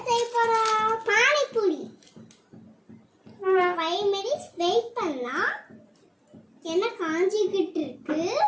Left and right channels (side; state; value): both; identical; correlation 1.00